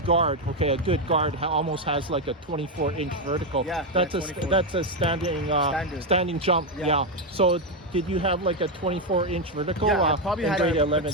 a good guard almost has like a 24-inch vertical. Yeah, that's 24. that's a standing jump. Yeah. So did you have like a 24-inch vertical? Yeah, I probably in had grade 11,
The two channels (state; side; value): normal; both; correlation 0.05